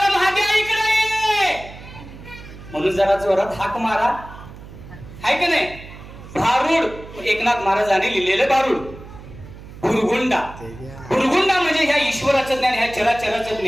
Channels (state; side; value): noise; right; hum, 16 dB below the sound